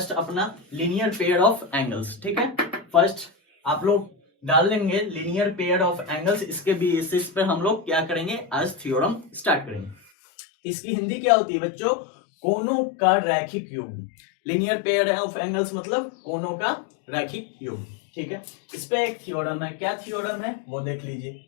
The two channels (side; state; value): right; drops out; at 10.0 s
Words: अपना लीनियर पेयर ऑफ एंगल्स। ठीक है, फर्स्ट आप लोग डाल लेंगे लीनियर पेयर ऑफ एंगल्स। इसके बेसिस पर हम लोग क्या करेंगे? आज थ्योरम स्टार्ट करेंगे। इसकी हिंदी क्या होती है बच्चों? कोनों का रैखिक योग। लीनियर पेयर ऑफ एंगल्स मतलब कोनों का रैखिक योग। ठीक है, इस पे एक थ्योरम है। क्या थ्योरम है वो देख लीजिए।